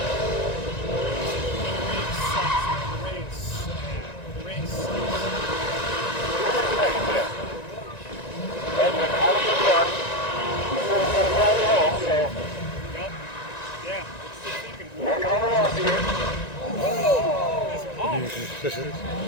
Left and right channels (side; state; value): right; late; 1.9 ms